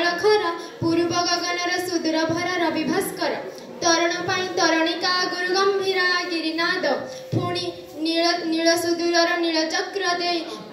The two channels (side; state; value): both; identical; correlation 1.00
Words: खरा पूर्व गगनर सुदूर भर रवि भास्कर तरण पाई तरणिका गुरु गंभीरा गिरिनाद पुणी नील सुदूरर नील चक्र दे